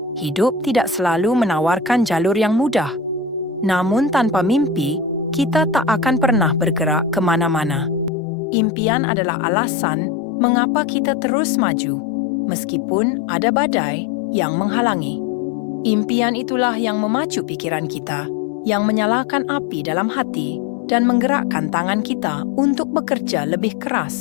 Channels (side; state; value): right; drops out; at 8.1 s